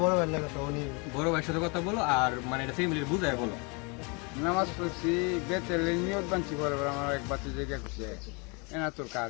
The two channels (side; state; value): right; quieter; 31.5 dB